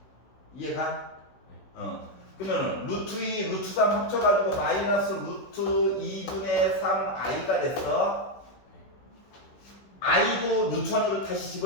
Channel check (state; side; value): late; right; 16 ms